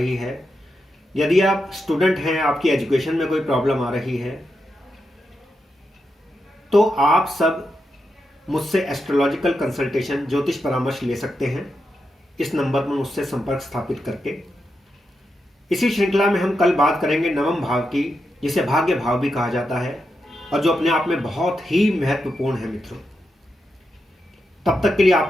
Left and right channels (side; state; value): both; normal; correlation 0.86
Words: है, यदि आप स्टूडेंट हैं, आपकी एजुकेशन में कोई प्रॉब्लम आ रही है, तो आप सब मुझसे एस्ट्रोलॉजिकल कंसल्टेशन ज्योतिष परामर्श ले सकते हैं इस नंबर पर मुझसे संपर्क स्थापित करके। इसी श्रृंखला में हम कल बात करेंगे नवम भाव की, जिसे भाग्य भाव भी कहा जाता है और जो अपने आप में बहुत ही महत्वपूर्ण है मित्रों। तब तक के लिए